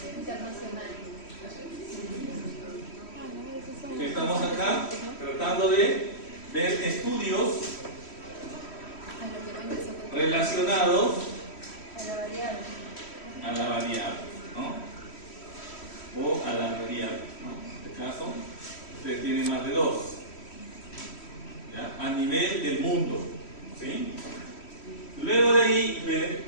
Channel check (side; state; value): right; late; 3.1 ms